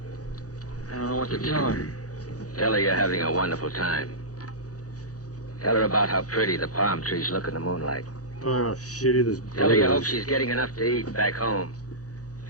I don't know what to tell her. Tell her you're having a wonderful time. Tell her about how pretty the palm trees look in the moonlight. Oh, shitty this Tell her you hope is. she's getting enough to eat back home.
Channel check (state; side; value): late; right; 0.67 ms